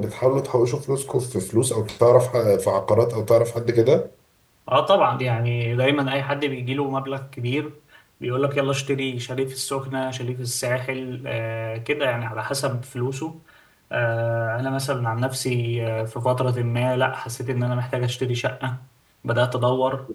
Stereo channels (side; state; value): both; identical; correlation 1.00